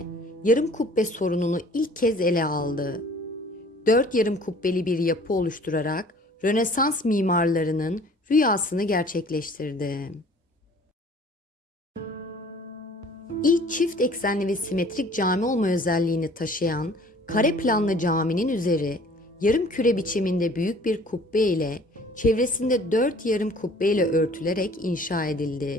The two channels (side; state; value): both; normal; correlation 0.51